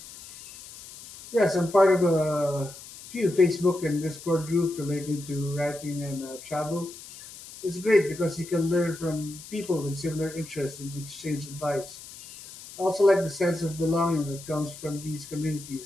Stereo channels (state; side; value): noise; left; hiss, 16 dB below the sound